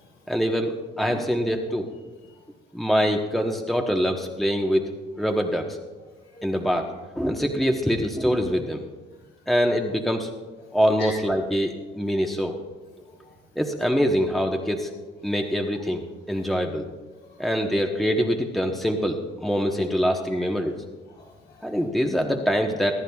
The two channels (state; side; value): normal; both; correlation 0.86